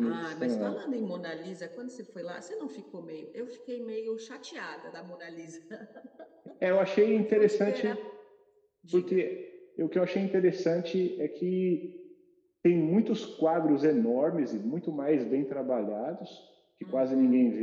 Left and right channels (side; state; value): both; identical; correlation 1.00